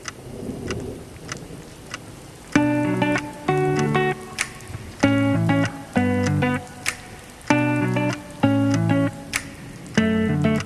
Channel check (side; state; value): both; identical; correlation 1.00